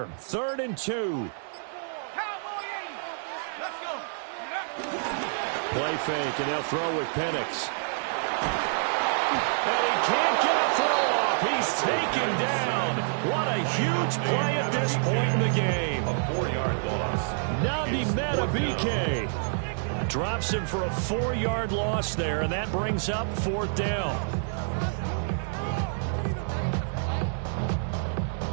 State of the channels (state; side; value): silent; left; digital silence